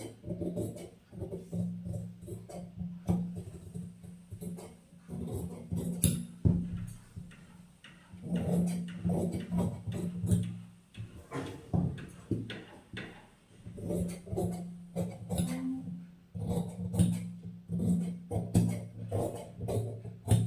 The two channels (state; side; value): identical; both; correlation 1.00